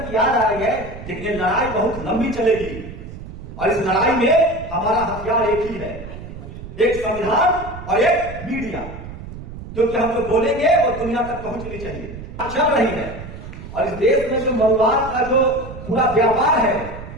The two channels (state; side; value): noise; right; rumble, 12 dB below the sound